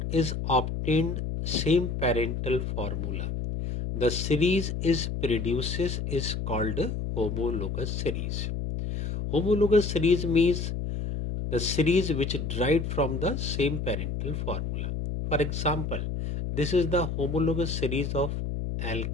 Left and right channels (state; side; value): noise; left; hum, 3 dB below the sound